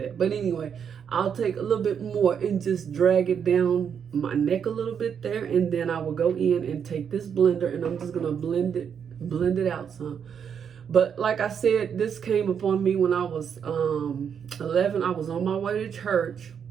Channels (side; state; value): left; quieter; 7.5 dB